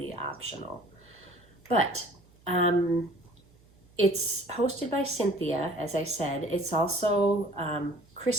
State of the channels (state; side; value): noise; right; hum, 29 dB below the sound